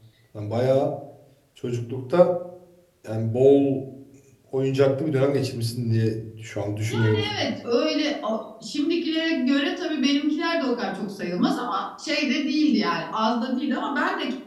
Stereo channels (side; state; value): both; identical; correlation 1.00